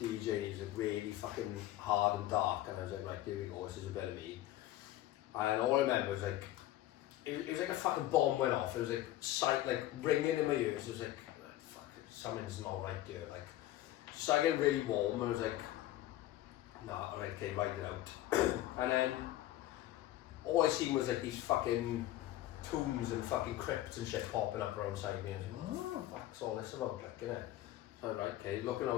DJ. He's like really fucking hard and dark, and I was like, right, here we go, this is a bit of me. And all I remember was like, it was like a fucking bomb went off. It was like ringing in my ears. It was like, fuck, something's not right here. Like, so I get really warm, and I was like, nah, alright, okay, write it out. And then all I seen was like these fucking tombs and fucking crypts and shit popping up around side me. I was like, what the fuck's all this about, like, innit? So right, okay, looking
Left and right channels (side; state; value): right; quieter; 14.5 dB